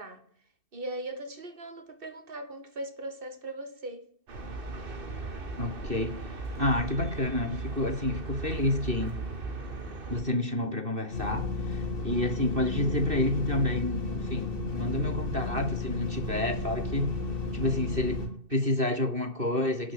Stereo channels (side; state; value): left; late; 2.6 ms